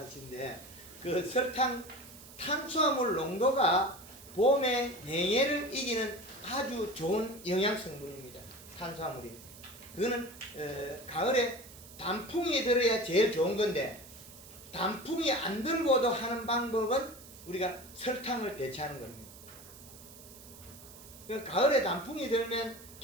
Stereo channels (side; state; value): right; noise; hiss, 18 dB below the sound